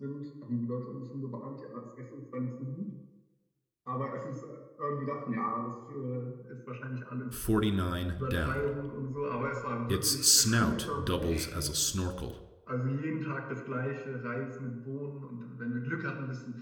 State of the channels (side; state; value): both; identical; correlation 1.00